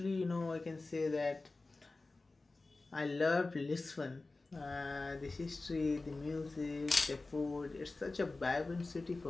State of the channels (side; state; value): right; quieter; 3.3 dB